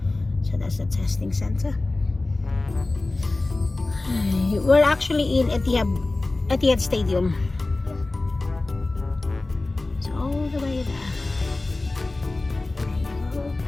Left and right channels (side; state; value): right; quieter; 3.1 dB